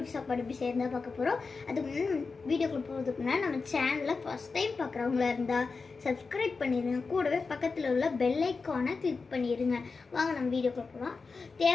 சாப்பாடு எப்படி செய்யறதா பார்க்க போகிறோம். அதுக்கு முன்னாடி வீடியோக்குள்ள போகிறதுக்கு முன்னாடி நம்ம சேனலில் ஃபஸ்ட் டைம் பார்க்குறவங்களா இருந்தால் சப்ஸ்கிரைப் பண்ணிடுங்க. கூடவே பக்கத்தில் உள்ள பெல் ஐக்கானை கிளிக் பண்ணிடுங்க. வாங்க நம்ம வீடியோக்குள்ள போகலாம்.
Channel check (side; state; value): right; quieter; 4.5 dB